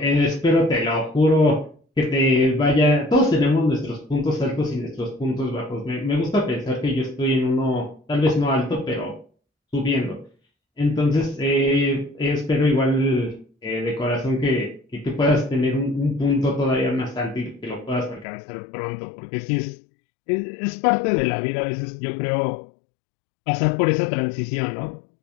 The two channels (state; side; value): drops out; right; at 18.2 s